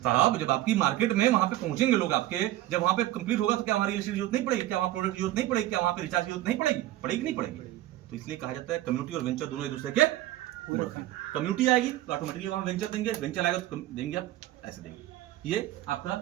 साहब? जब आपकी मार्केट में वहाँ पे पहुंचेंगे लोग आपके, जब वहाँ पे कंप्लीट होगा तो क्या वहाँ रियल एस्टेट की जरूरत नहीं पड़ेगी? क्या वहाँ प्रोडक्ट की जरूरत नहीं पड़ेगी? क्या वहाँ पे रिचार्ज की जरूरत नहीं पड़ेगी? पड़ेगी नहीं पड़ेगी? तो इसलिए कहा जाता है कम्युनिटी और वेंचर दोनों एक दूसरे के पूरक हैं। कम्युनिटी आएगी तो ऑटोमेटिकली वहाँ वेंचर देंगे, वेंचर आएगा तो देंगे आप, ऐसे देंगे। ये आपका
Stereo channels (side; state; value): left; quieter; 15.0 dB